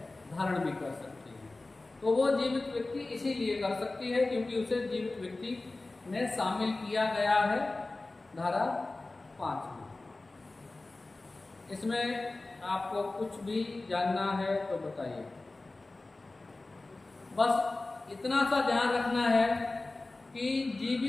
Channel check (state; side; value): quieter; right; 3.1 dB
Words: धारण भी कर सकती है। तो वो जीवित व्यक्ति इसीलिए कर सकती है क्योंकि उसे जीवित व्यक्ति में शामिल किया गया है धारा 5 में। इसमें आपको कुछ भी जानना है तो बताइए। बस इतना सा ध्यान रखना है कि